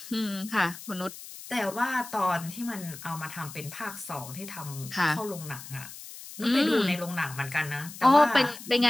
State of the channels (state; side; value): noise; left; hiss, 14 dB below the sound